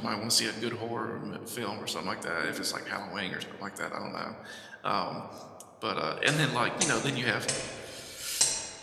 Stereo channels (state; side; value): identical; both; correlation 1.00